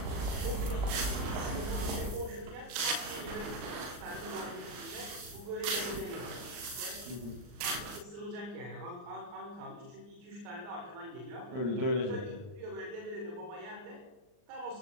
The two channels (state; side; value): late; left; 39 ms